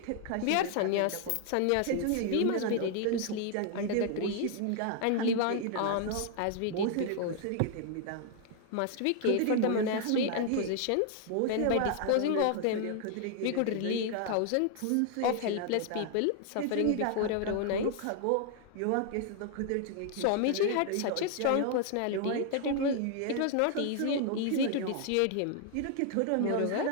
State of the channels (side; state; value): both; different; correlation 0.00